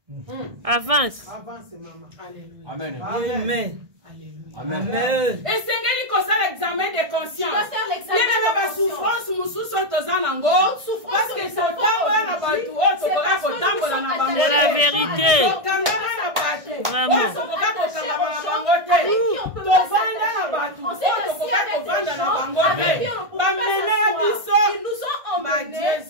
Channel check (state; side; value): late; left; 1.6 ms